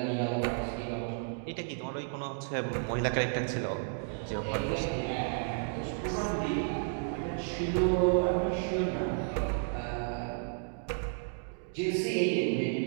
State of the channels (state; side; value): silent; left; digital silence